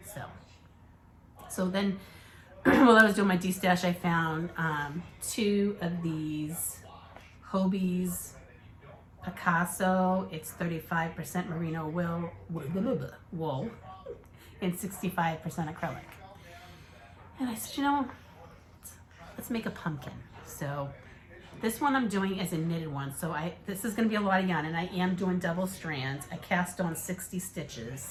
So then, while I was doing my destash, I found 2 of these Hobie's Picasso. It's 35% merino wool and 65% acrylic. And I said, you know, let's make a pumpkin. So this one I'm doing is a knitted one. So this is going to be a lot of yarn, and I am doing double strands. I cast on 60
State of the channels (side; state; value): both; identical; correlation 1.00